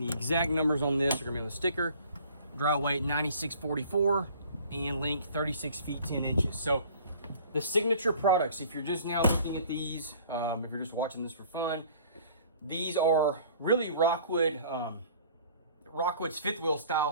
the exact numbers on this are going to be on the sticker. Dry weight 9644 and length 36 feet 10 inches. So the signature products, if you're just now looking at these, if you're just watching this for fun, these are really Rockwood, Rockwood's fifth wheel style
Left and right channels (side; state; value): both; inverted; correlation -0.51